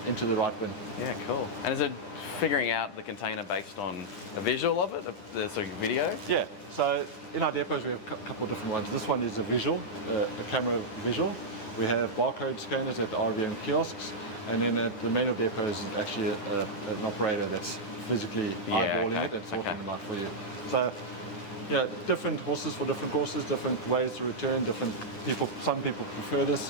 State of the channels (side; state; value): right; late; 10 ms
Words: into the right bin. Yeah, cool. And is it figuring out the container based on a visual of it, the sort of video? Yeah, so in our depots we have a couple of different ones. This one is a visual, a camera visual. We have barcode scanners at RVM kiosks, and then at the manual depot is actually an operator that's physically eyeballing it and sorting them out for you. So, different horses for different courses, different ways to return, different people. Some people prefer